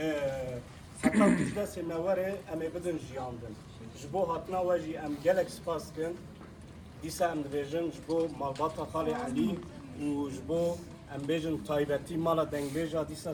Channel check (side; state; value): both; identical; correlation 1.00